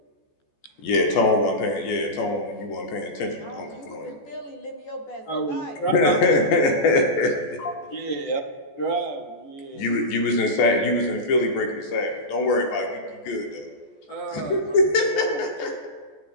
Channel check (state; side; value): late; right; 14 ms